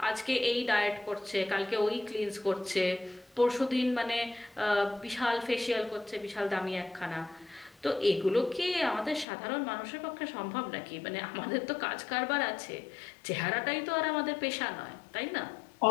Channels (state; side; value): drops out; right; at 9.2 s